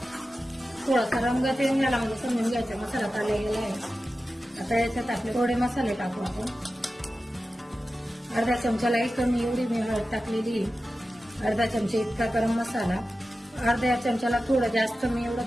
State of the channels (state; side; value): normal; both; correlation 0.93